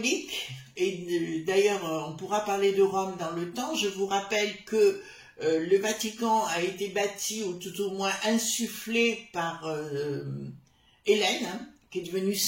et d'ailleurs on pourra parler de Rome dans le temps. Je vous rappelle que le Vatican a été bâti ou tout au moins insufflé par Hélène, hein, qui est devenue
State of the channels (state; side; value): identical; both; correlation 1.00